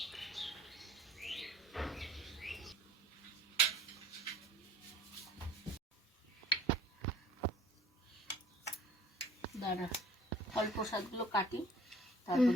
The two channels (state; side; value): normal; both; correlation 0.50